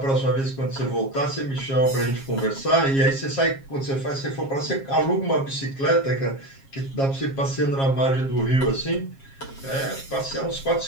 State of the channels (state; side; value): late; right; 7.4 ms